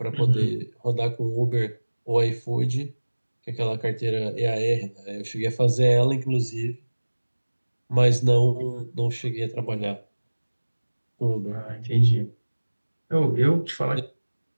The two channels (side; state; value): both; inverted; correlation -1.00